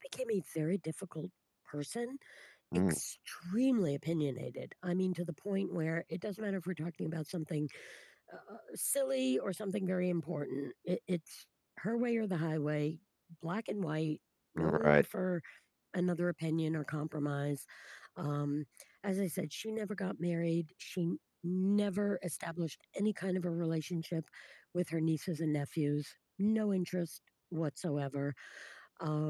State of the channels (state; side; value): identical; both; correlation 1.00